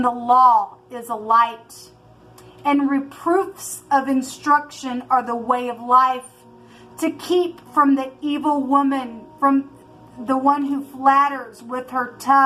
the law is a light, and reproofs of instruction are the way of life, to keep from the evil woman, from the one who flatters with her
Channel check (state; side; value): identical; both; correlation 1.00